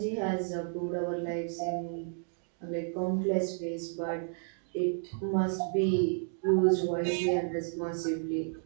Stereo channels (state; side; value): silent; left; 56 dB below the other